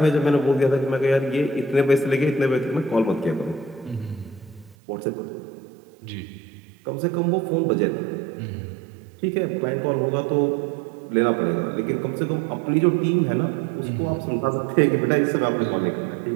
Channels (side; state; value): left; drops out; at 4.8 s